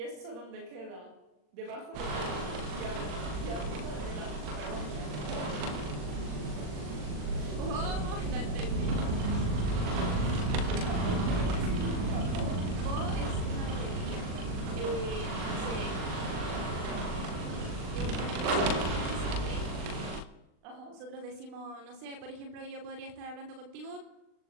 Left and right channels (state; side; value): late; left; 39 ms